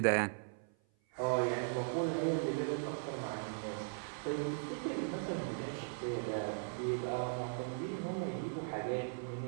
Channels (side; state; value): left; silent; 52 dB below the other